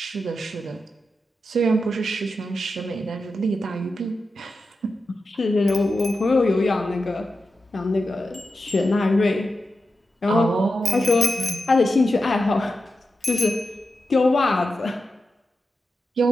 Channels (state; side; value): normal; both; correlation 0.90